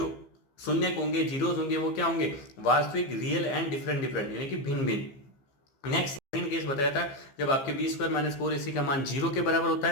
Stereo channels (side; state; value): right; late; 15 ms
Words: शून्य होंगे जीरोज होंगे वो क्या होंगे वास्तविक रियल एंड डिफरेंट यानी कि भिन्न भिन्न। नेक्स्ट सेकंड केस बताया था जब आपके बी स्क्वायर माइनस 4ac का मान 0 के बराबर होता